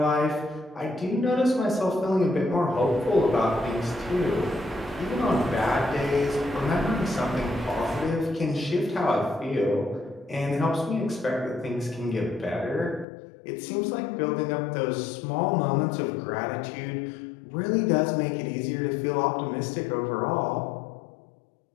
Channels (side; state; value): right; drops out; at 13.1 s